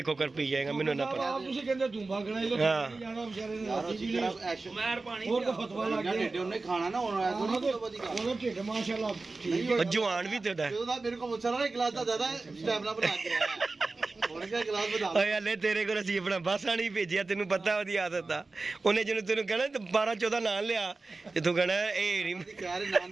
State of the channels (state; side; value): quieter; left; 3.6 dB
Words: खोकर पी जाएगा मैनू इन्ना पता जवान भी तेरा मेरे को एक गिलास ज्यादा स्टैमिना बना के हले तेरे को असीं अपना बसा नहीं भेजिया तेन पता ओदी आदत दा उन्हें जिन्होंने तेन कहना 12-14 नाम लिया ते तू कहना ए नहीं कह रहे नाम